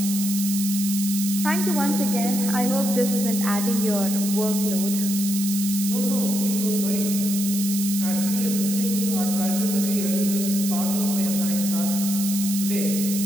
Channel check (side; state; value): right; noise; hiss, 5 dB below the sound